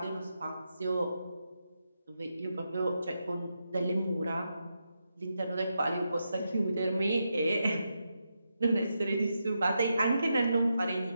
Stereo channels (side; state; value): both; inverted; correlation -0.85